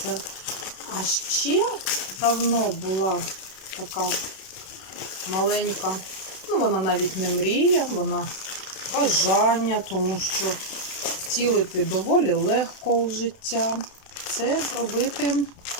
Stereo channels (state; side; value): late; right; 32 ms